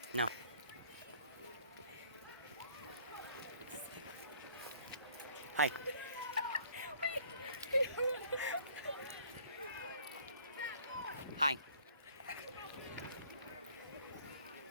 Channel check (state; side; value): inverted; both; correlation -0.57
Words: No. Hi. Hi.